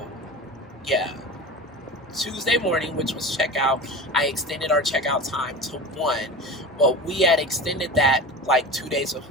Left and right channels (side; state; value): both; normal; correlation 0.31